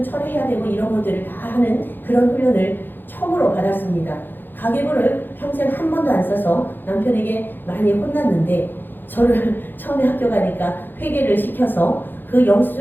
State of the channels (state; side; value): late; right; 0.094 ms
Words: 처리해야 되고 이런 것들을 다 하는 그런 훈련을 처음으로 받았습니다. 가계부를 평생 한 번도 안 써서 남편에게 많이 혼났는데 저를 처음에 학교 가니까 회계를 시켜서 그